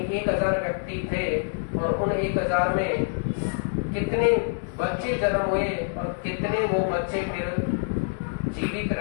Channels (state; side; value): silent; right; 61 dB below the other